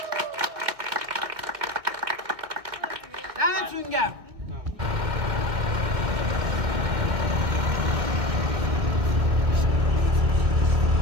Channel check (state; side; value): late; left; 2.1 ms